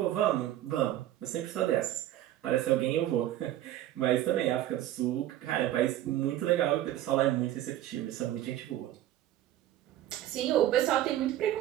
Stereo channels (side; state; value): left; quieter; 13.3 dB